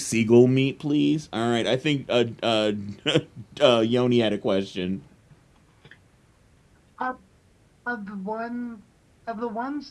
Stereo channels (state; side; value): identical; both; correlation 1.00